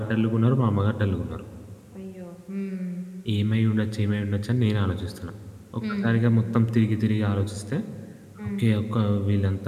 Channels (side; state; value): both; identical; correlation 1.00